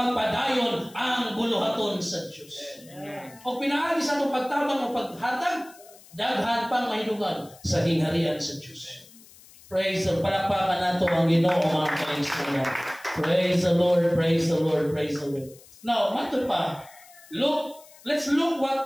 ang buluhaton sa Diyos. O pinaagi sa itong pagtabang o paghatag, daghan pang mahidungag sa gingharian sa Diyos. Praise the Lord. Palakpakan nato ang Ginoo mga kaigsunan. Praise the Lord, praise the Lord, praise the Lord. Now, mato pa, Luke let's look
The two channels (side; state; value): left; noise; hiss, 23 dB below the sound